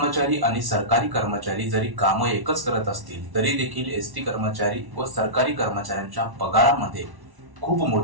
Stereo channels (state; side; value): late; left; 1.1 ms